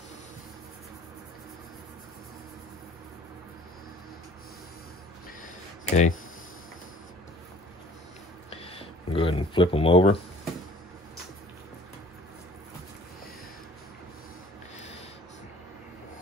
Okay. Go ahead and flip them over.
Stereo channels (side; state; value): both; normal; correlation 0.52